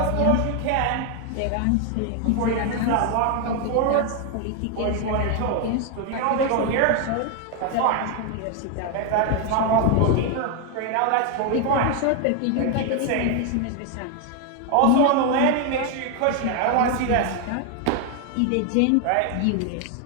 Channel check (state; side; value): different; both; correlation 0.01